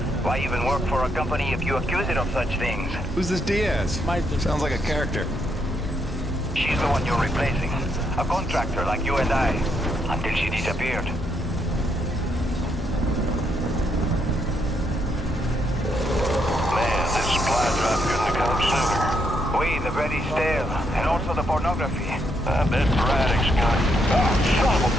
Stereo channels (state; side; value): normal; both; correlation 0.76